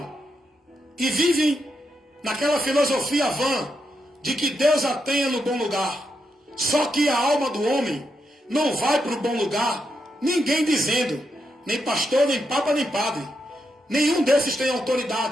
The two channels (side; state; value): both; normal; correlation 0.83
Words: e vivem naquela filosofia vã de que Deus a tenha no bom lugar. Só que a alma do homem não vai para o bom lugar, ninguém dizendo, nem pastor, nem papa, nem padre. Nenhum desses tem